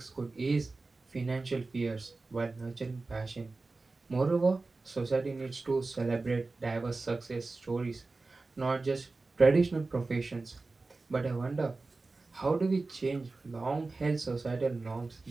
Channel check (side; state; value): left; quieter; 3.6 dB